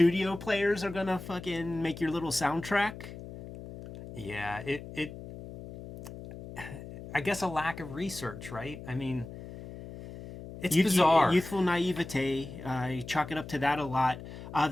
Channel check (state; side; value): noise; left; hum, 13 dB below the sound